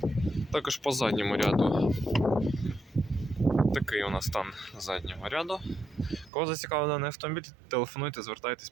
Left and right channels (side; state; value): left; drops out; at 6.3 s